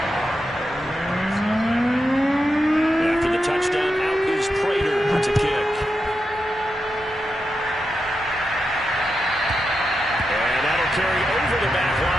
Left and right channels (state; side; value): normal; both; correlation 0.87